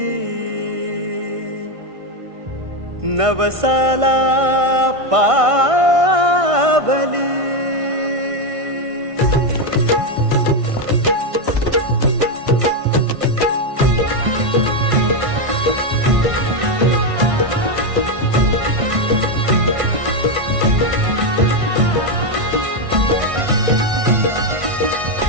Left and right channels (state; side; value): late; left; 1.5 ms